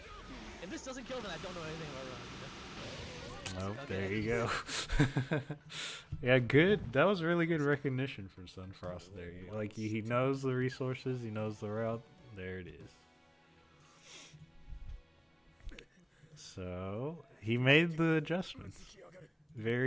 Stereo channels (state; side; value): identical; both; correlation 1.00